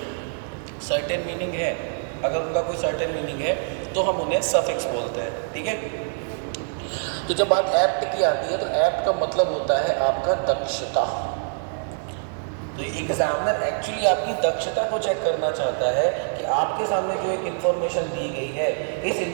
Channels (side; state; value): left; silent; digital silence